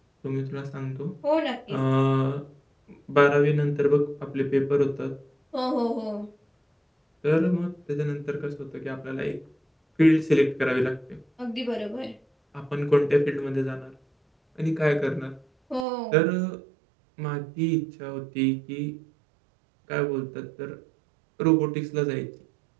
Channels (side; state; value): left; drops out; at 15.9 s